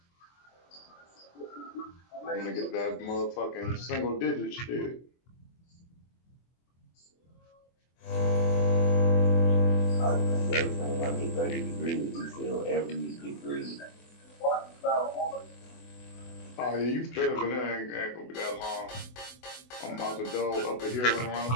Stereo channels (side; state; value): right; late; 24 ms